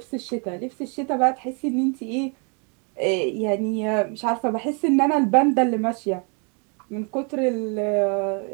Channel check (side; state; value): left; quieter; 36.7 dB